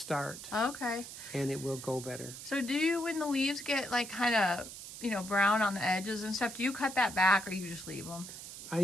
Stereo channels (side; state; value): right; noise; hiss, 11 dB below the sound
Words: Okay. and it will go better. So do you, when the leaves get like kind of, you know, brown on the edges and stuff, do you cut that back or you just leave them? I